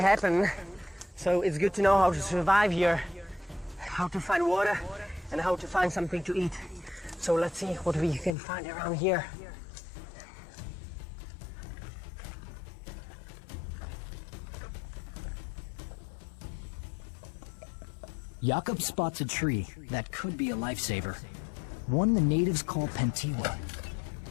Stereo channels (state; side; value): drops out; right; at 8.3 s